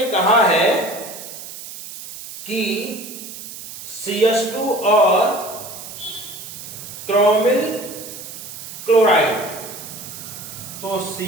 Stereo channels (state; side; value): noise; right; hiss, 12 dB below the sound